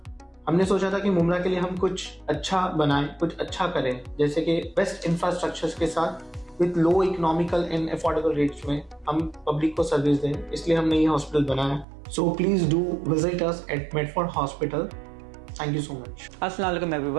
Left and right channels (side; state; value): left; drops out; at 11.9 s